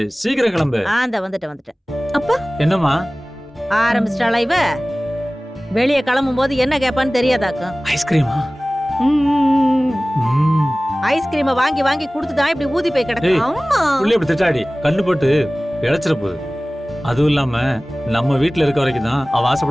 சீக்கிரம் கிளம்பு. அந்த வந்துட்டேன். அப்பா என்னம்மா? ஆரம்பிச்சிட்டாளா இவ? வெளியே கிளம்பும் போது என்ன கேட்பான்னு தெரியாதாக்கும். ஐஸ்கிரீமா? ஐஸ்கிரீமை வாங்கி வாங்கி கொடுத்துதான் இப்படி ஊதி போய் கிடக்கு. அம்மா புள்ளி இப்படி திட்டாடி கண்ணு போட்டு இழைச்சிட போகுது. அதுவும் இல்லாம நம்ம வீட்டுல இருக்க வரைக்கும் தான் அவ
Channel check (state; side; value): normal; both; correlation 0.98